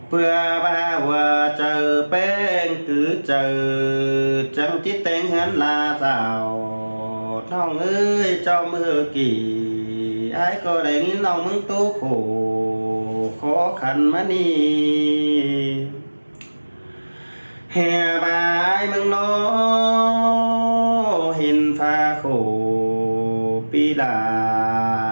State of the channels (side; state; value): both; inverted; correlation -1.00